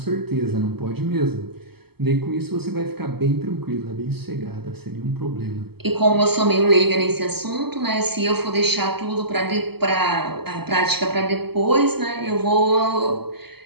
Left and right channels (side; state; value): left; late; 0.96 ms